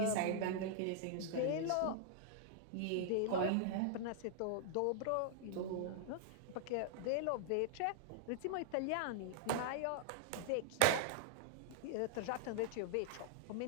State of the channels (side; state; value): both; different; correlation -0.01